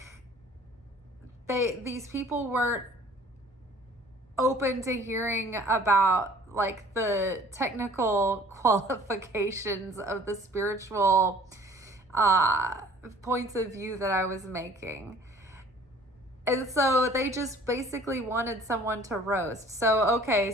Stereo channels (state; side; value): normal; both; correlation 0.52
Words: these people weren't open to hearing about like the technical qualifications of the spiritual points of view that I was making. And so they just basically wanted someone to roast. So, okay,